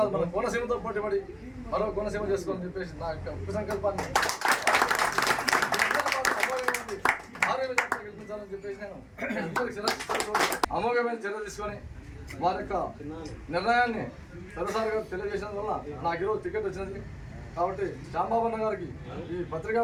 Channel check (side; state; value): both; identical; correlation 1.00